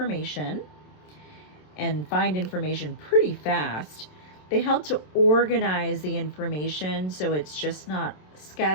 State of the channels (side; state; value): right; late; 27 ms